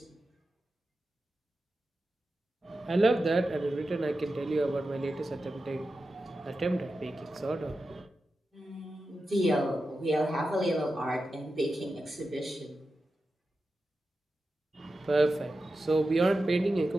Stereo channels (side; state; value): both; normal; correlation 0.92